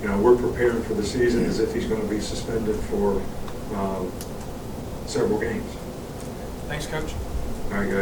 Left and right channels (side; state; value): both; identical; correlation 1.00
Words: know, we're preparing for the season as if he's going to be suspended for several games. Thanks, Coach. All right,